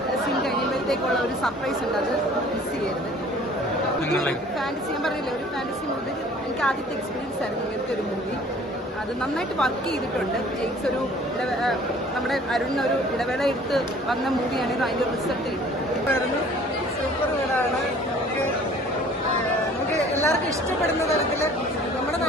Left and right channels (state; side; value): normal; both; correlation 0.51